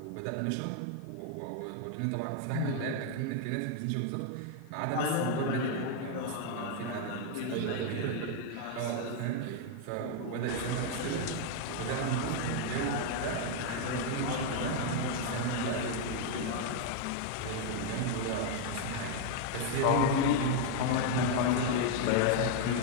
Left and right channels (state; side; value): different; both; correlation 0.00